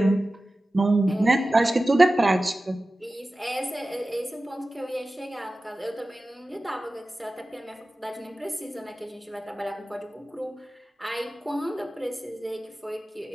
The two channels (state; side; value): normal; both; correlation 0.96